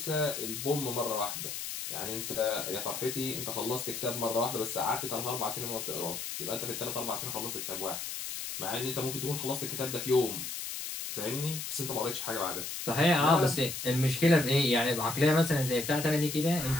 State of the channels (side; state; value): left; noise; hiss, 6 dB below the sound